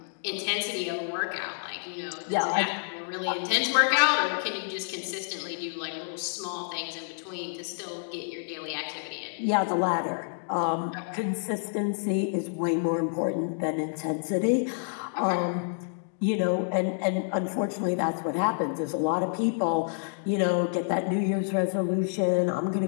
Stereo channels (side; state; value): right; silent; digital silence